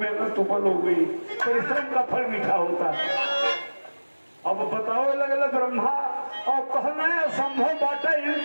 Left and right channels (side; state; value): both; inverted; correlation -1.00